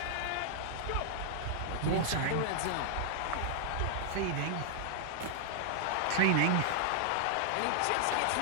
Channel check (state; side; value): different; both; correlation -0.01